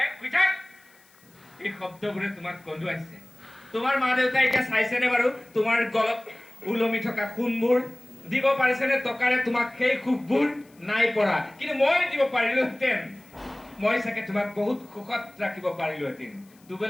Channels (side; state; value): left; noise; hiss, 30 dB below the sound